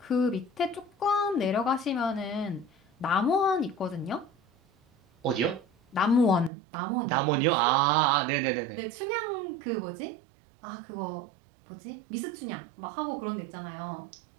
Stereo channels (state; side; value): drops out; left; at 6.5 s